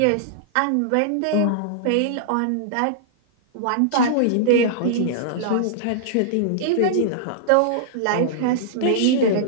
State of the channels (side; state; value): both; different; correlation -0.02